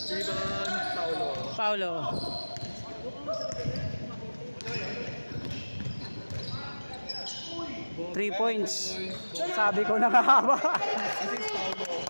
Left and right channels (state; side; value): inverted; both; correlation -1.00